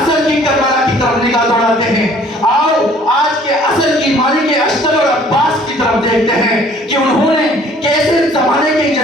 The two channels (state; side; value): normal; both; correlation 0.55